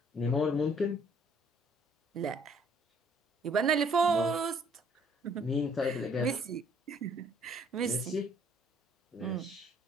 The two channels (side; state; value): both; normal; correlation 0.62